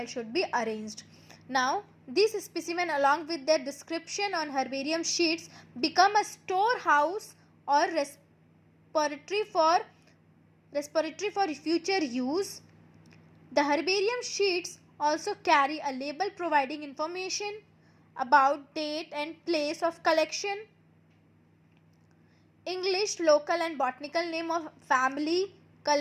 should be arranged. Now these specimen along with their description on herbarium sheets become a storehouse or repository for future use. The herbarium sheets also carry a label providing information about date and place of collection, English, local and botanical name of family,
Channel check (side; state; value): both; identical; correlation 1.00